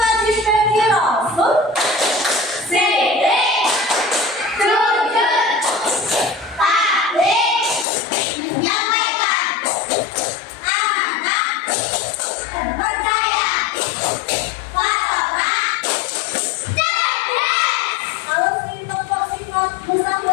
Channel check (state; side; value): drops out; right; at 7.9 s